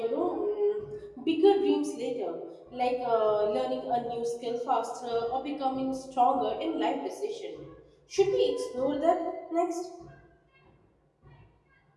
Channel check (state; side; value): identical; both; correlation 1.00